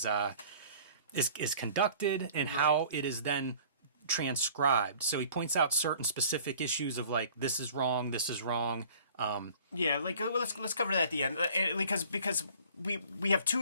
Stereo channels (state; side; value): inverted; both; correlation -0.50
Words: conducted and how it is then transcribed. So he points out certain specific issues of like, this is wrong, this is wrong. Yeah, like let's cover that at the end, because we have 2